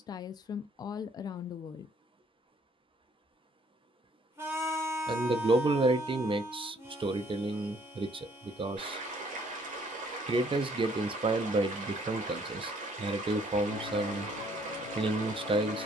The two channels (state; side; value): normal; both; correlation 0.63